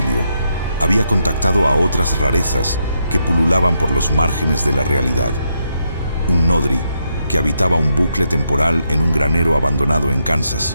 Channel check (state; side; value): inverted; both; correlation -0.80